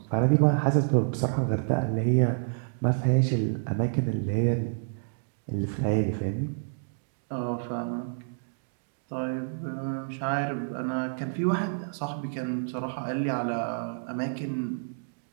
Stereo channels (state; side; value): silent; left; digital silence